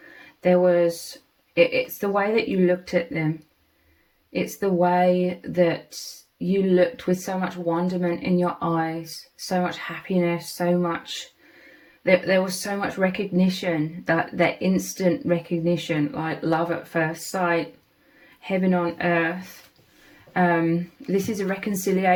there was, it's the way that you looked at them. It's the way that you looked with so much wonderment in your eyes, so much happiness, so much, there was so much recognition, that instant recognition, like love at first sight, heaven on earth. This is a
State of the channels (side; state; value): both; identical; correlation 1.00